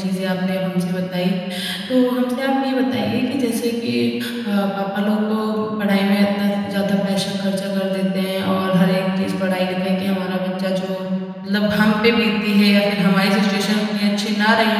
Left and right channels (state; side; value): identical; both; correlation 1.00